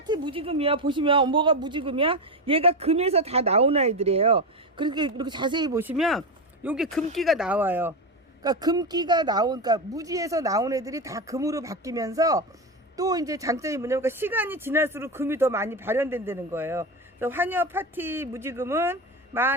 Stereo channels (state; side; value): normal; both; correlation 0.15